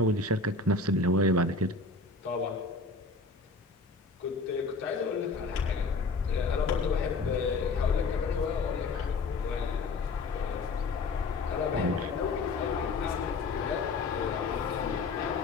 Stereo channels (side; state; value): right; quieter; 3.7 dB